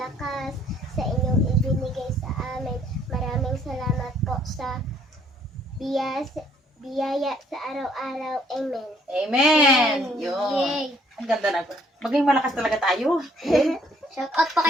sa inyong ibinigay sa amin. Maraming salamat po sa biyaya sa araw-araw. Amen. Amen! Yun. Yay! Ang ganda na. Maging malakas talaga tayo. Shout out po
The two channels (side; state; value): both; normal; correlation 0.63